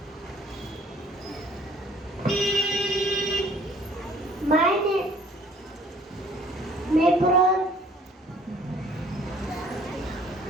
My name, my pro,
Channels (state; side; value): normal; both; correlation 0.57